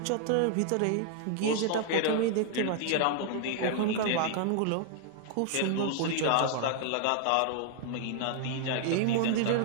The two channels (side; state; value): both; different; correlation 0.00